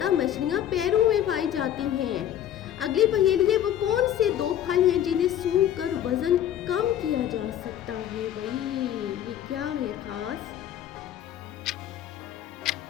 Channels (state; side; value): quieter; right; 11.0 dB